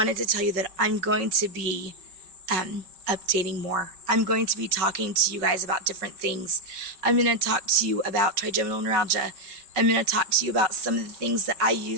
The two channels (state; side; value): late; left; 5.3 ms